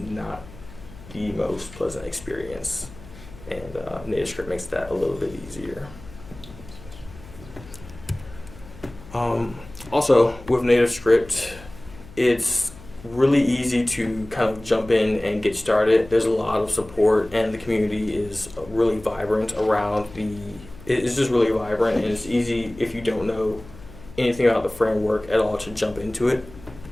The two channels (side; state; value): left; noise; hum, 18 dB below the sound